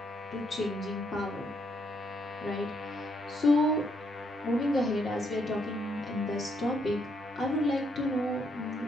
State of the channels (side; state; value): both; normal; correlation 0.74